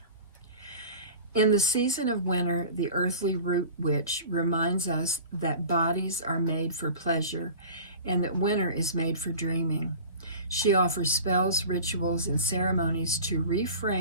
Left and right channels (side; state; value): both; inverted; correlation -0.39